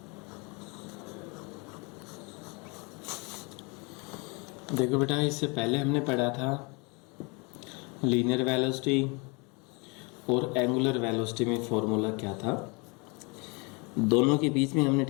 देखो बेटा, इससे पहले हमने पढ़ा था लीनियर वेलोसिटी और एंगुलर वेलोसिटी में फॉर्मूला क्या था। दोनों के बीच में हमने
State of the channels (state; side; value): quieter; right; 30.3 dB